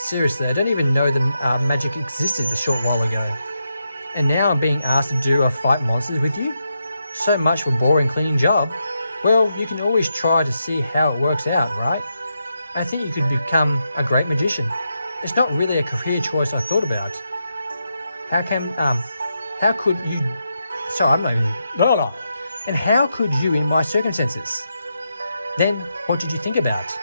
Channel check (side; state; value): both; inverted; correlation -0.84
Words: I don't even know that magic existed a short while ago. And now I'm being asked to do a fight monsters with you? So much for a boring cleaning job. Well, you can always try to see how it works out, right? I think you could become a great magician. It's not really a career choice I thought about. How could you... Sorry, I'm not even... No. And how could you in my circumstances? Then, what did you think about?